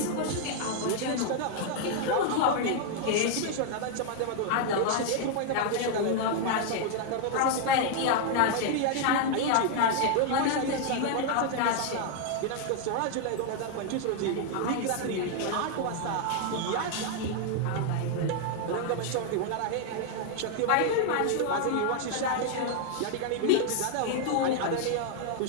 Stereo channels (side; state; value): both; different; correlation 0.00